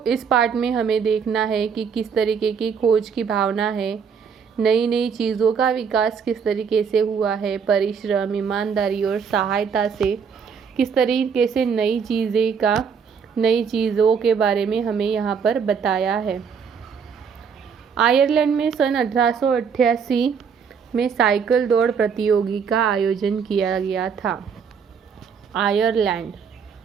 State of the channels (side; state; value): left; quieter; 6.5 dB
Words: इस पार्ट में हमें देखना है कि किस तरीके की खोज की भावना है, नई नई चीज़ों का विकास किस तरीके से हुआ है, परिश्रम, ईमानदारी और सहायता से किस तरीके से नई चीज़ों के बारे में हमें यहाँ पर बताया है। आयरलैंड में सन 1888 में साइकिल दौड़ प्रतियोगिता का आयोजन किया गया था। आयरलैंड